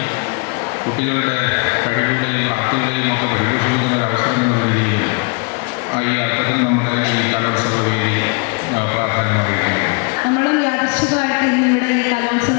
കുട്ടികളുടെ കഴിവുകളെയും പ്രാപ്തികളെയും ഒക്കെ പരിപോഷിപ്പിക്കുന്ന ഒരു അവസരം എന്ന രീതിയിലും ഈ അർത്ഥത്തിൽ നമ്മുടെ ഈ കലോത്സവ വേദി പ്രാധാന്യം അറിയിക്കുന്നു. നമ്മളും യാദൃശ്ചികമായിട്ട് ഇന്നിവിടെ ഈ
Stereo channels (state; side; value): quieter; right; 32.5 dB